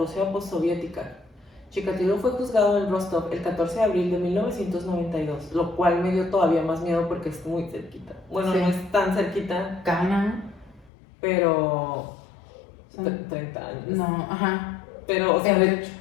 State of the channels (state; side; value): drops out; right; at 10.9 s